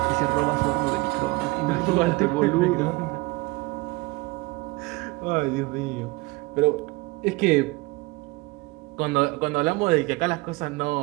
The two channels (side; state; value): left; quieter; 23.1 dB